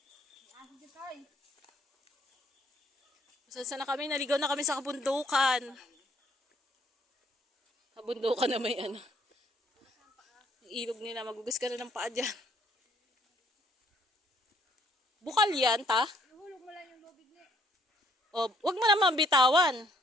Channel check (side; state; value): both; normal; correlation 0.65